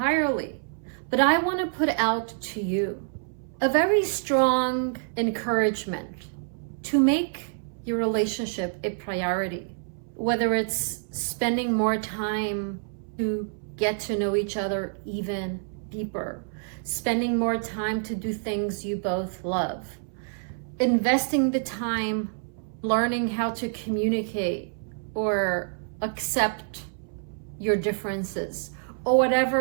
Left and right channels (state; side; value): silent; left; 60 dB below the other